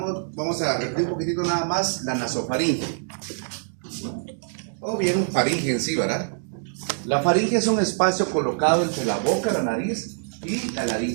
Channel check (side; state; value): left; silent; digital silence